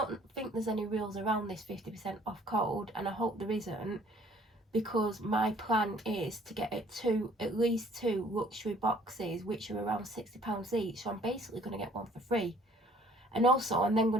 think there's any rules around this 50% off code, and I hope there isn't, because my plan is to get it to at least 2 luxury boxes, which are around £60 each. So I'm basically going to get one for free, and also I'm then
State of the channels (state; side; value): normal; both; correlation 0.57